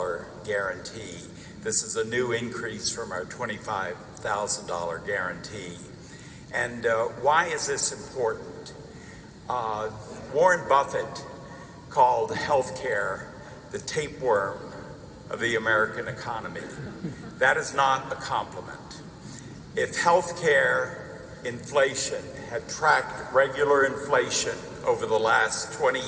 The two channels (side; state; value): both; identical; correlation 1.00